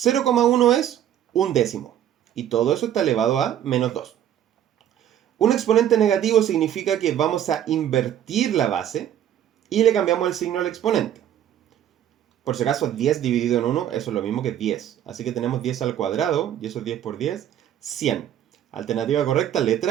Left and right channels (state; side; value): quieter; left; 10.8 dB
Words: es un décimo, y todo eso está elevado a menos 2. Un exponente negativo significa que vamos a invertir la base y le cambiamos el signo al exponente. Por si acaso, 10 dividido en 1, eso es lo mismo que 10. Así que tenemos 10 al cuadrado, y eso es 10 por 10, 100. Alternativa correcta,